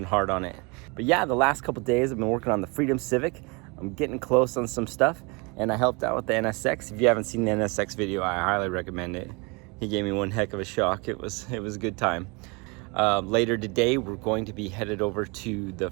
hard on it. But yeah, the last couple days I've been working on the Freedom Civic. I'm getting close on some stuff, and I helped out with the NSX. If you haven't seen the NSX video, I highly recommend it. He gave me one heck of a shock. It was a good time. Later today, we're going to be headed over to the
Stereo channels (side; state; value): left; quieter; 29.2 dB